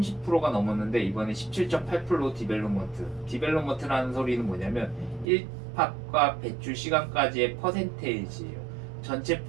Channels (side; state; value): left; drops out; at 5.2 s